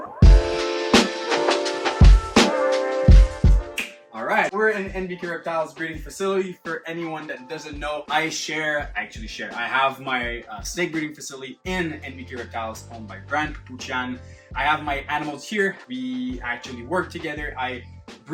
Alright, we're in NBK Retiles breeding facility. For anyone that doesn't know, I have my snake breeding facility in NBK Retiles owned by Brand Puchan. I have my animals here. We actually work together. I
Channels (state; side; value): identical; both; correlation 1.00